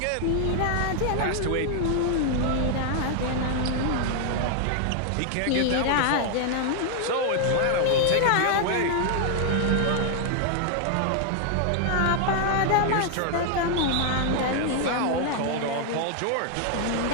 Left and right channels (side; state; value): both; different; correlation 0.00